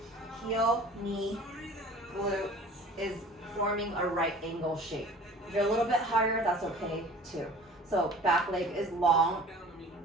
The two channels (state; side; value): normal; both; correlation 0.46